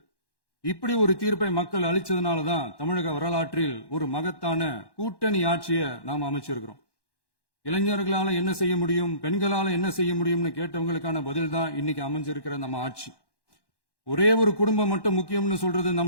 இப்படி ஒரு தீர்ப்பை மக்கள் அளிச்சதுனாலதான் தமிழக வரலாற்றில் ஒரு மகத்தான கூட்டணி ஆட்சியை நாம் அமைச்சிருக்கிறோம். இளைஞர்களால என்ன செய்ய முடியும், பெண்களால என்ன செய்ய முடியும்னு கேட்டவங்களுக்கான பதில் தான் இன்னைக்கு அமைஞ்சிருக்கிற நம்ம ஆட்சி. ஒரே ஒரு குடும்பம் மட்டும் முக்கியம்னு சொல்றது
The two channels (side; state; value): right; late; 1.1 ms